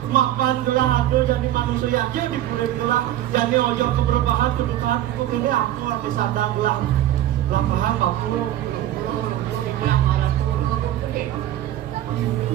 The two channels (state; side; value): quieter; left; 12.8 dB